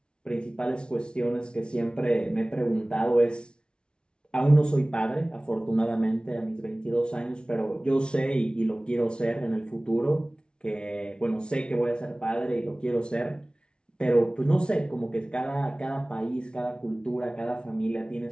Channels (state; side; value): late; right; 0.056 ms